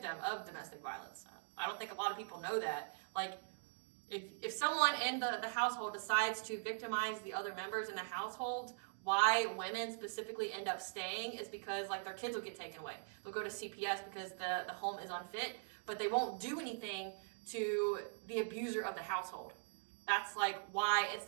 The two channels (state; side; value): silent; left; digital silence